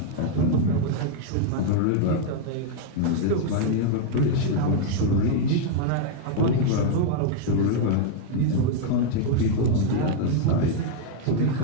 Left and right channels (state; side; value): different; both; correlation 0.00